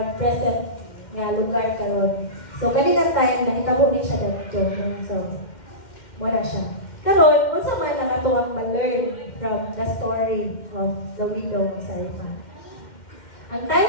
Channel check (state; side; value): late; right; 2.1 ms